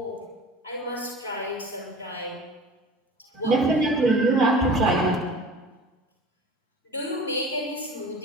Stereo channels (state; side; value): normal; both; correlation 0.40